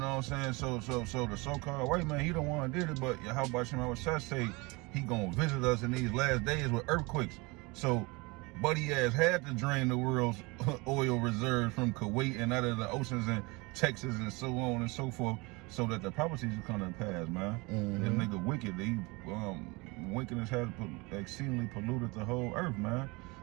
what I'm saying? So the so-called white man, he the one did it, but how about Shema Shah say he gonna visit us in these last days with earthquakes? So Buddy ass had to drain the world's oil reserves from Kuwait and out of the oceans and Texas and so on and so forth, so that the prophecies will come to pass, man. This nigga wicked. He wickedness has exceedingly polluted the whole earth, man.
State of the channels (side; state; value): left; quieter; 25.9 dB